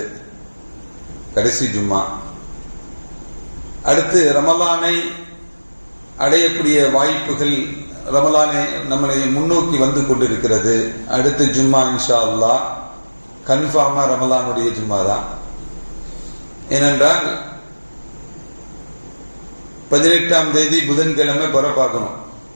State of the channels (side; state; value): both; inverted; correlation -1.00